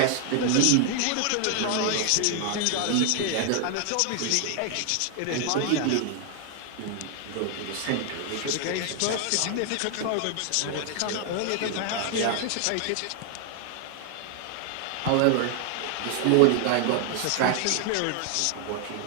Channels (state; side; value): different; both; correlation 0.00